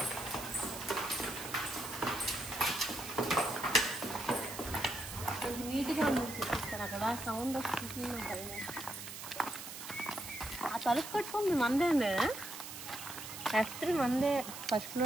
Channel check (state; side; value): noise; right; hiss, 10 dB below the sound